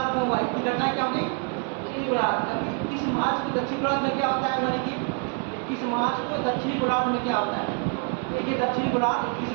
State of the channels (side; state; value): left; quieter; 38.2 dB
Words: में हुआ। इसकी घटना क्या होगी, उत्तरी गोलार्ध में। 21 मार्च को दक्षिण गोलार्ध में क्या होता है, यानी कि 21 मार्च को दक्षिणी गोलार्ध में क्या होता है। देखिए दक्षिणी गोलार्ध 21